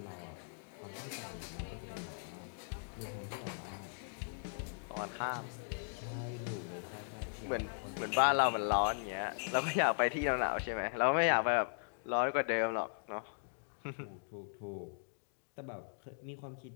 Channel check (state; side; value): silent; right; digital silence